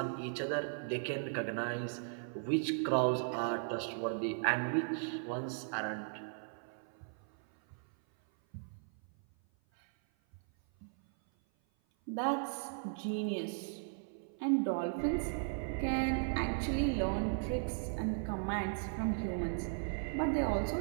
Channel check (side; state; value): left; silent; 53 dB below the other